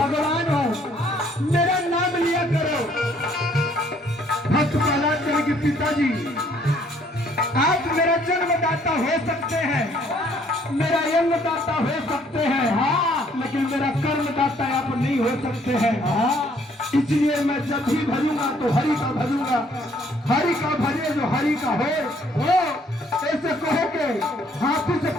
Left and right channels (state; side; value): normal; both; correlation 0.63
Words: हूँ, मेरा नाम लिया करो। भक्त प्रहलाद कहे कि पिताजी आप मेरा जन्मदाता हो सकते हैं, मेरा जन्मदाता हो सकते हैं, हाँ, लेकिन मेरा कर्मदाता आप नहीं हो सकते हैं। हाँ, इसलिए मैं जब भी भजूंगा तो हरि का भजूंगा। हरि का भजे जो हरि का हो ऐसे कहो के हाथी से